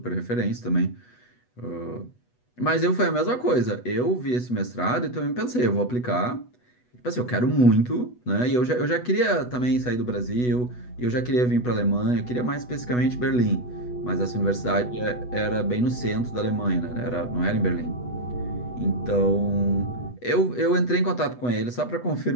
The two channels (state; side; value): late; right; 8.1 ms